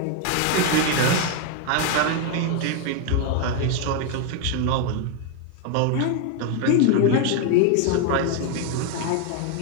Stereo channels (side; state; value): both; different; correlation 0.01